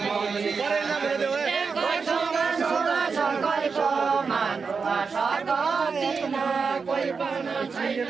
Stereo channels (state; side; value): quieter; left; 5.2 dB